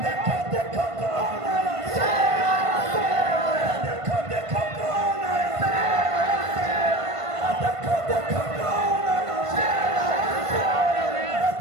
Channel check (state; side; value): late; left; 1.5 ms